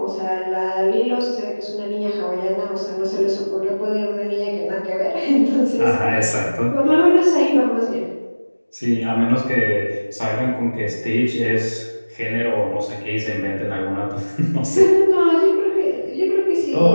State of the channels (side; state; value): both; inverted; correlation -1.00